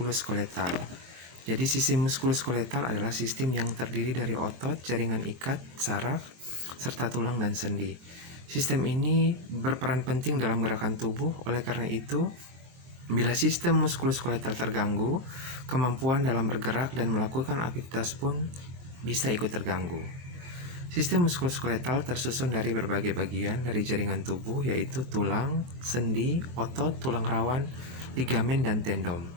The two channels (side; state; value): left; late; 23 ms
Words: Jadi sistem muskuloskeletal adalah sistem yang terdiri dari otot, jaringan ikat, saraf, serta tulang dan sendi. Sistem ini berperan penting dalam gerakan tubuh. Oleh karena itu, bila sistem muskuloskeletal terganggu, kemampuan dalam bergerak dan melakukan aktivitas pun bisa ikut terganggu. Sistem muskuloskeletal tersusun dari berbagai bagian dari jaringan tubuh, yaitu tulang, sendi, otot, tulang rawan, ligamen, dan tendon.